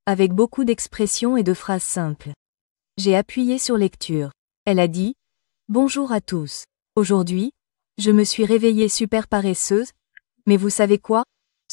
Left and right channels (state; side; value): silent; right; digital silence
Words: avec beaucoup d'expressions et de phrases simples. J'ai appuyé sur lecture. Elle a dit « Bonjour à tous. Aujourd'hui, je me suis réveillée super paresseuse, mais vous savez quoi?